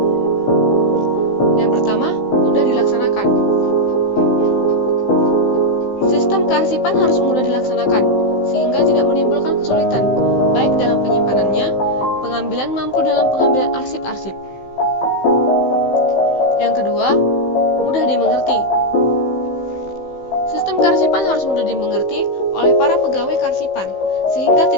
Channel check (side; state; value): right; late; 15 ms